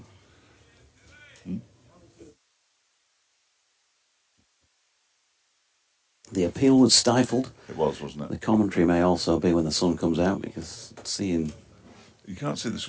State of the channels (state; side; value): identical; both; correlation 1.00